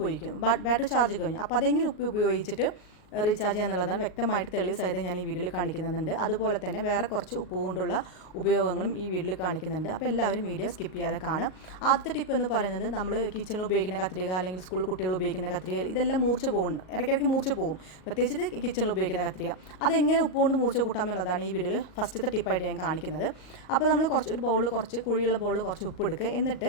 പോയിരിക്കും, ബാറ്ററി ചാർജ് കഴിഞ്ഞു. അപ്പോൾ അതെങ്ങനെ ഉപ്പ് ഉപയോഗിച്ചിട്ട് റീചാർജ് ചെയ്യാന്നുള്ളതാണ് വ്യക്തമായിട്ട് തെളിവ് സഹിതം ഞാൻ ഈ വീഡിയോയിൽ കാണിക്കുന്നുണ്ട്. അതുപോലെ തന്നെ വേറെ കുറച്ച് ഉപ്പ് കൊണ്ടുള്ള ഉപയോഗങ്ങളും ഈ വീഡിയോയിൽ കാണിക്കുന്നുണ്ട്. അപ്പോൾ എല്ലാവരും വീഡിയോ സ്കിപ്പ് ചെയ്യാതെ കാണാം. ആദ്യത്തെ ടിപ്പ് എന്ന് പറയുന്നത്, നമ്മൾ കിച്ചണിൽ ഉപയോഗിക്കുന്ന കത്രിക അല്ലെങ്കിൽ സ്കൂൾ കുട്ടികൾ ഉപയോഗിക്കുന്ന കത്രിക ഇതെല്ലാം മൂർച്ച പോകുന്നുണ്ട്, ഇടയ്ക്കിടയ്ക്ക് മൂർച്ച പോകും, പ്രത്യേകിച്ച് കിച്ചണിൽ ഉപയോഗിക്കുന്ന കത്രിക. അതെങ്ങനെ ഉപ്പ് കൊണ്ട് മൂർച്ച കൂട്ടാം എന്നുള്ളതാണ് ഈ വീഡിയോയിൽ ഫസ്റ്റത്തെ ടിപ്പായിട്ട് ഞാൻ കാണിക്കുന്നത്. അപ്പോൾ നമ്മൾ ഒരു ബൗളിൽ കുഴിയുള്ള ബൗളിൽ കുറച്ച് ഉപ്പ് എടുക്കുക.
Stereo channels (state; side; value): late; right; 38 ms